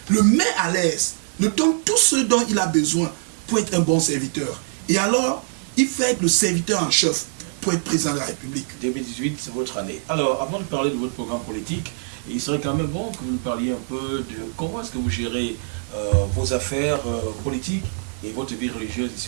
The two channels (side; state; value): left; silent; digital silence